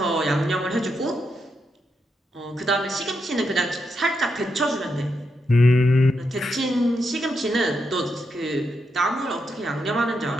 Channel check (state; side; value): normal; both; correlation 0.83